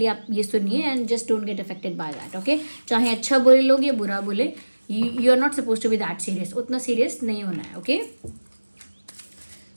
आप ये सुनिए and just don't get affected by that. Okay, चाहे अच्छा बोले लोग या बुरा बोले, you are not suppose to be that serious, उतना सीरियस नहीं होना है। ओके,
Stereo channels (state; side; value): inverted; both; correlation -1.00